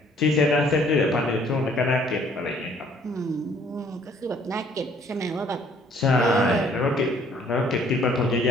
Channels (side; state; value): both; normal; correlation 0.60